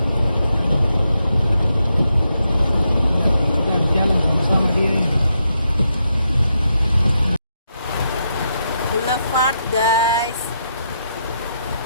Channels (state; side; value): inverted; both; correlation -0.82